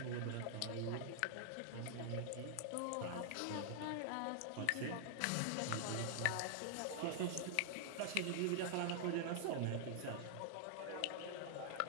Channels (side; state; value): both; different; correlation -0.01